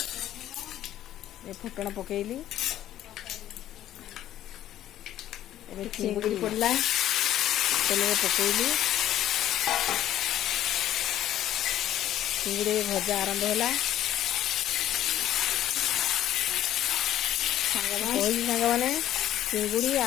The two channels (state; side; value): quieter; right; 12.4 dB